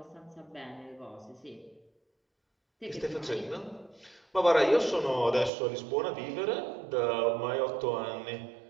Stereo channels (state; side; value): drops out; left; at 5.5 s